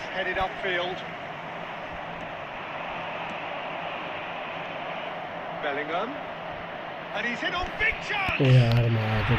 headed upfield. Bellingham. And he's in on big chance! यार मार तो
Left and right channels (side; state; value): both; identical; correlation 1.00